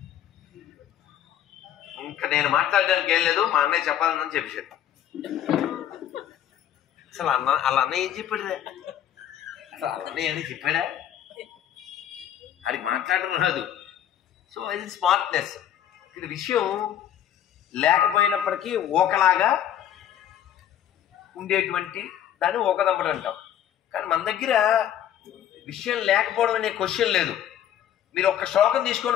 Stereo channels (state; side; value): quieter; right; 10.8 dB